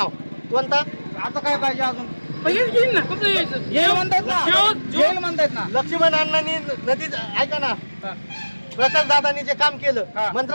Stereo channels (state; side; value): inverted; both; correlation -1.00